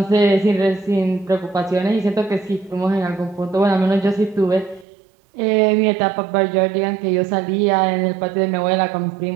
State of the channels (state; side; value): drops out; left; at 4.9 s